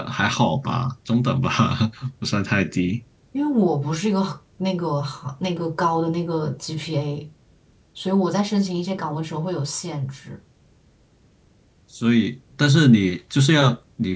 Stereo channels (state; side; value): identical; both; correlation 1.00